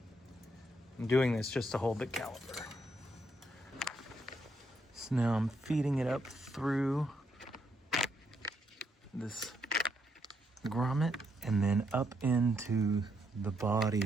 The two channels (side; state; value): both; normal; correlation 0.76